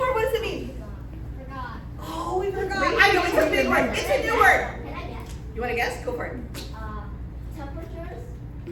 What does it mean? Oh, we forgot. I know, it's a big word. It's a new word. You want to guess? Go for it. Temperatures.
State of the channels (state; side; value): identical; both; correlation 1.00